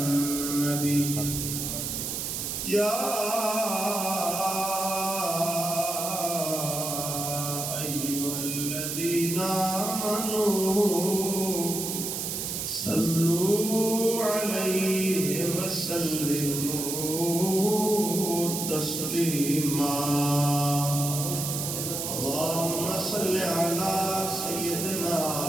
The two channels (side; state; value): right; noise; hiss, 3 dB below the sound